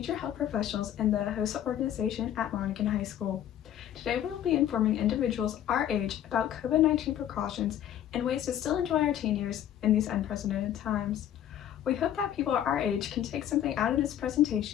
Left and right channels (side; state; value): right; quieter; 10.9 dB